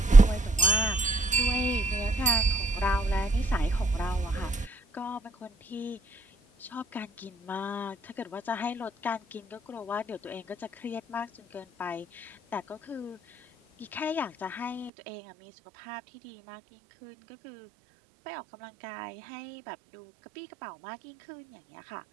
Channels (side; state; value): left; drops out; at 14.9 s